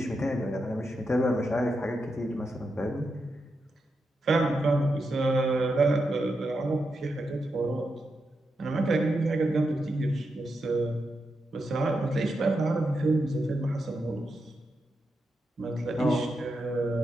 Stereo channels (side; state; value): both; normal; correlation 0.86